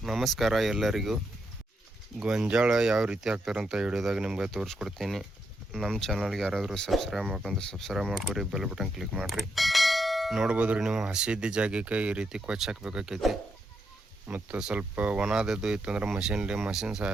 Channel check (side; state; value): both; normal; correlation 0.81